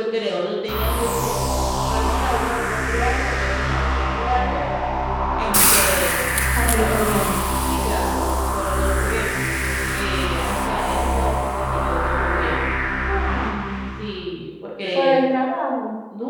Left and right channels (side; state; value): both; identical; correlation 1.00